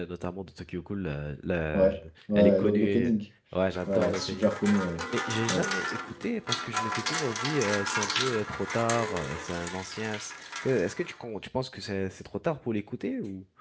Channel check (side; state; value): both; identical; correlation 1.00